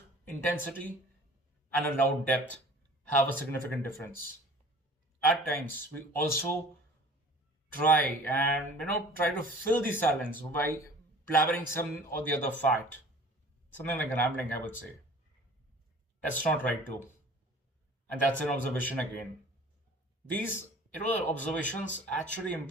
intensity and a loud depth have a significant difference. At times, we also try to fill the silence by blabbering some or the other fact. Something like rambling, I would say. That's not right too. And that's an observation again. These observations actually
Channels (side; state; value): both; normal; correlation 0.46